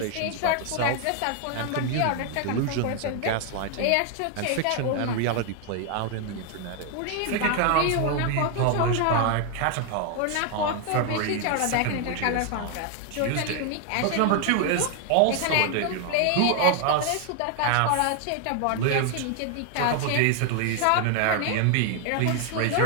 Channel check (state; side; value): different; both; correlation 0.00